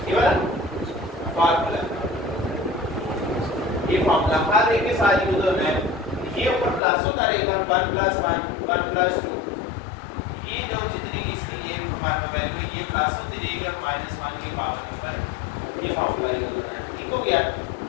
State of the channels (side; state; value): right; drops out; at 6.8 s